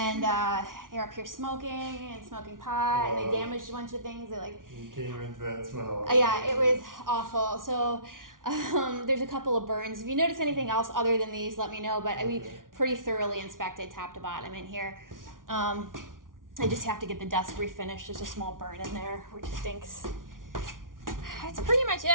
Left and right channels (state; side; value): late; left; 0.89 ms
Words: they're up here smoking and smoking pot, and they damaged a bunch of things. They like. You came into that smell. Yeah, it was awful. So there's a couple of burns. If you notice anything else other than these, let me know. But we pretty thoroughly inspected top to bottom in here. I just have to get the desk refinished. There's a small burn in there, which stinks. That's pretty much